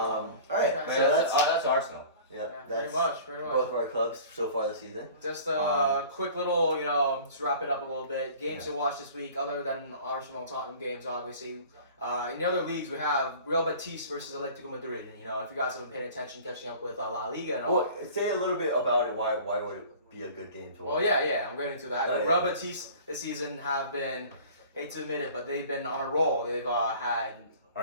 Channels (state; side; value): inverted; both; correlation -0.44